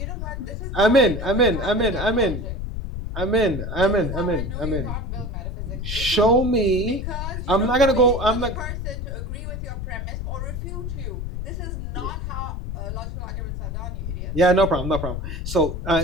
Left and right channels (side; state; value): left; noise; rumble, 4 dB below the sound